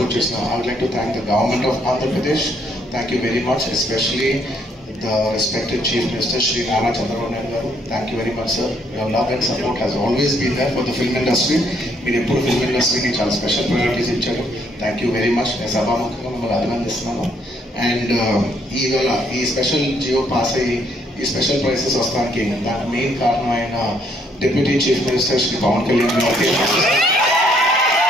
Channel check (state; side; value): normal; both; correlation 0.69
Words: చేసిన I would like to thank the government of Andhra Pradesh. Thank you very much, especially the respected Chief Minister Shri Nana Chandrababu Naidu garu. Thank you very much, sir. Your love and support has always been there for the film industry. మీరు ఎప్పుడు film ఇండస్ట్రీకి చాలా special priorities ఇచ్చారు. Thank you very much. నేను సభాముఖంగా మిమ్మల్ని అభినందిస్తున్నాను. And ఈవేళ ఈ స్పెషల్ జియో పాస్ అయ్యి ఈ స్పెషల్ ప్రైసెస్ వస్తానికి దానికి మెయిన్ కారణం అయిన deputy chief minister Shri Pawan Kalyan గారికి,